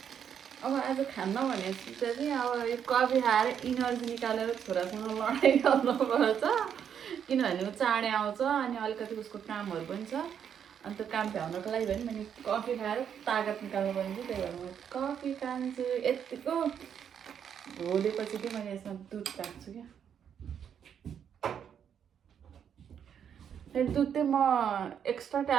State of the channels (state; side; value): quieter; left; 8.3 dB